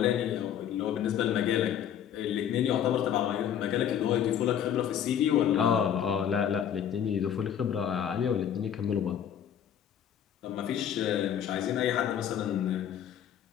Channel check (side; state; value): right; quieter; 9.4 dB